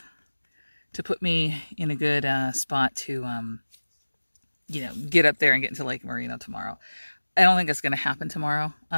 to put me in a good spot to get up there and get into Lake Merino tomorrow. I don't think that's going to happen tomorrow.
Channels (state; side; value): inverted; both; correlation -1.00